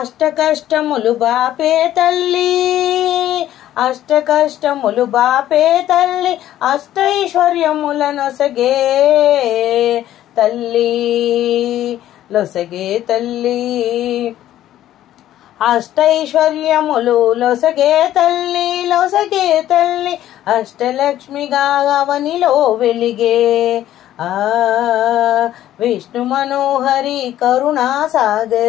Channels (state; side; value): quieter; right; 12.8 dB